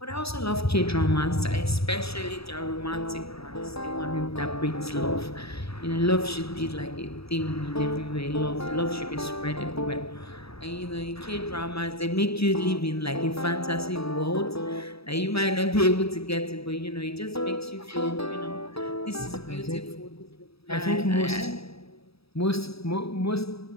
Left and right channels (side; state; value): right; late; 0.77 ms